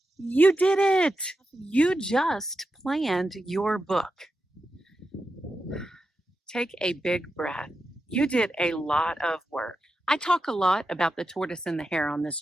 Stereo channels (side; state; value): both; normal; correlation 0.89